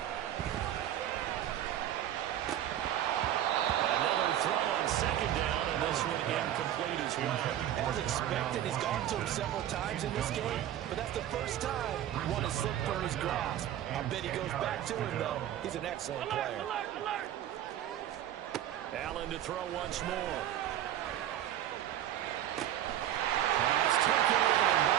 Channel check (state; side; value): quieter; left; 11.7 dB